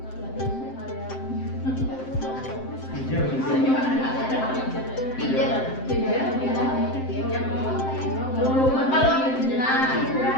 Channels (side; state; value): right; late; 7.7 ms